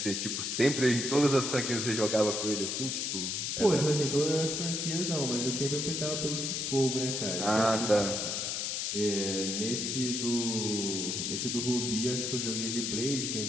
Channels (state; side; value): noise; left; hiss, 1 dB below the sound